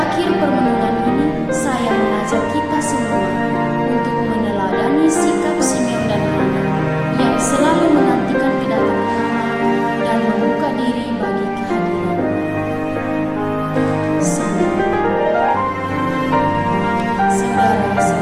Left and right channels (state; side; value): identical; both; correlation 1.00